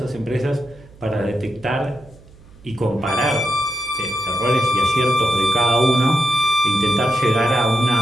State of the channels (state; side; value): noise; right; hum, 24 dB below the sound